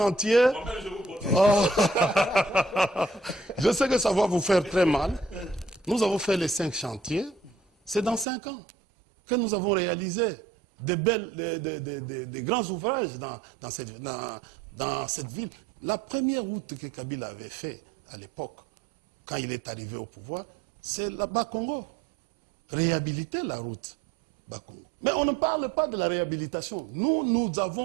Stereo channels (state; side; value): drops out; left; at 8.2 s